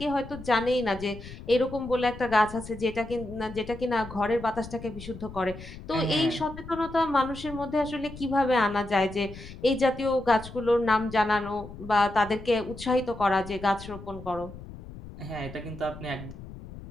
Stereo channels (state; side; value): noise; left; rumble, 14 dB below the sound